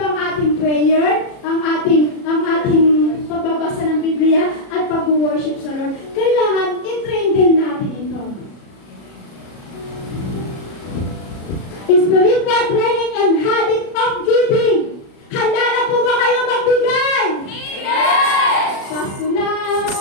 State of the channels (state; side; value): late; right; 37 ms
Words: ang ating prayer, ang ating pagbabasa ng Biblia at pag-worship sa Lord. Kailangan i-train din natin ito. Spiritual training and habit of giving. Handa na po ba kayo magbigay? Amen. Pasko na!